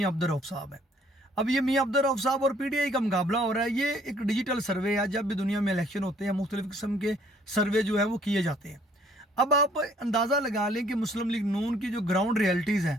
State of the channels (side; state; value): both; normal; correlation 0.61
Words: अब्दुल रऊफ साहब है। अब ये मियाँ अब्दुल रऊफ साहब और पीटीआई का मुकाबला हो रहा है। ये एक डिजिटल सर्वे है, जब भी दुनिया में इलेक्शन होते हैं मुख्तलिफ किस्म के सर्वे जो है वो किए जाते हैं। अब आप अंदाज़ा लगा लें कि मुस्लिम लीग नून की जो ग्राउंड रियलिटीज़